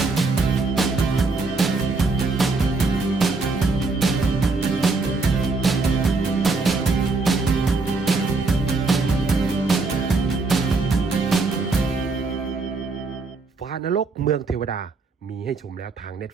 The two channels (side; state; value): left; quieter; 3.8 dB